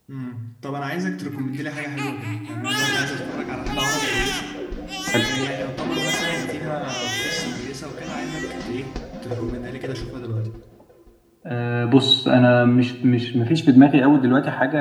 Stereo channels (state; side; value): identical; both; correlation 1.00